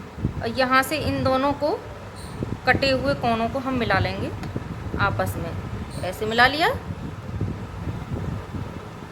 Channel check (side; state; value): both; identical; correlation 1.00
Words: यहाँ से इन दोनों को कटे हुए कोनों को हम मिला लेंगे आपस में, ऐसे मिला लिया।